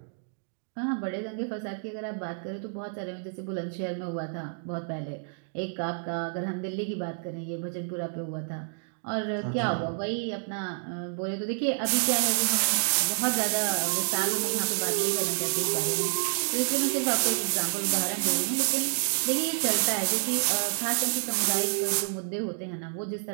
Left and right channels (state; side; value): silent; left; digital silence